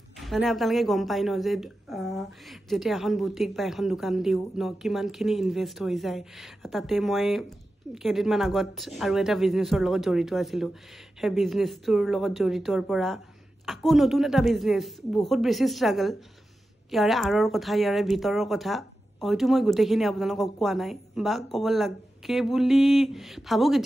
মানে আপোনালোকে গম পায় ন যে যেতিয়া এখন বুটিক বা এখন দোকান দিও ন কিমানখিনি ইনভেষ্ট হৈ যায় তাতে মই কেইদিনমান আগত আৰু এটা বিজনেছৰ লগত জড়িত আছিলো সেই বিজনেছটোৰ লগত জড়িতৰ পৰা আকৌ নতুন এটা বিজনেছ বহুত বেছি ষ্ট্ৰাগল ইয়াৰে আৰৰ কথা ইয়াৰে ভিতৰৰ কথা হয়তো মই গোটেইখিনি আপোনালোকক কোৱা নাই বা ক'ব লাগে বুলি ভাবো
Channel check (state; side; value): normal; both; correlation 0.92